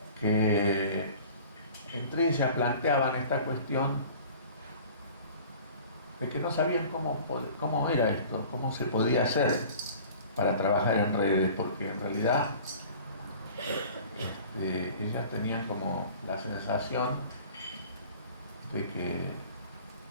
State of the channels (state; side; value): inverted; both; correlation -0.45